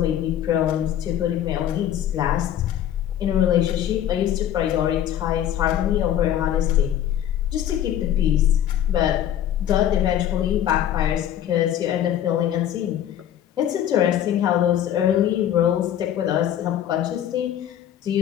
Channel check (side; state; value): right; quieter; 10.8 dB